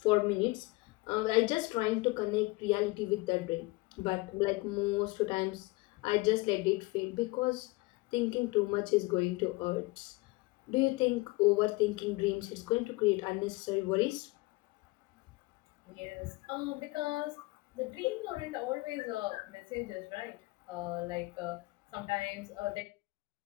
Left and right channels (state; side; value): quieter; right; 23.1 dB